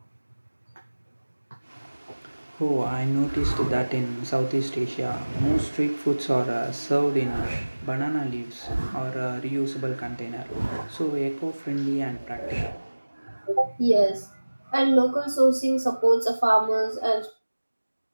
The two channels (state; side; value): inverted; both; correlation -1.00